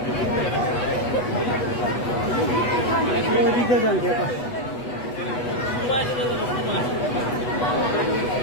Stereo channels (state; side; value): late; right; 8.2 ms